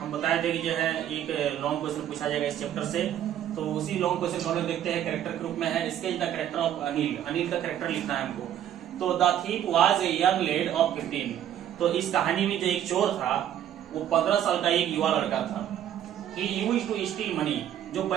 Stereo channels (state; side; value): quieter; left; 10.8 dB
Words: बताए थे कि जो है एक लॉन्ग क्वेश्चन पूछा जाएगा इस चैप्टर से। तो उसी लॉन्ग क्वेश्चन को हम लोग देखते हैं, कैरेक्टर के रूप में है। Sketch the character of Anil, Anil का कैरेक्टर लिखना है हमको। तो the thief was a young laid off 15। तो इस कहानी में जो एक चोर था वो 15 साल का एक युवा लड़का था। He used to steal money, जो